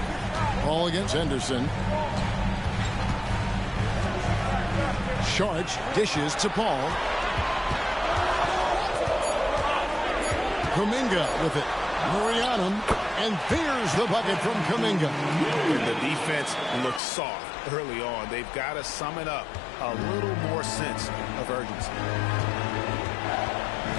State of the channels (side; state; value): right; drops out; at 17.0 s